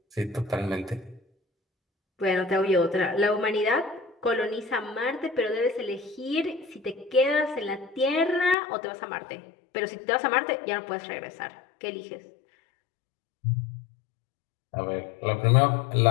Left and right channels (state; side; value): drops out; right; at 8.6 s